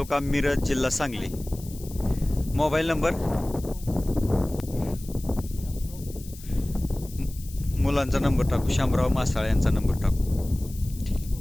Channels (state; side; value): noise; left; hiss, 18 dB below the sound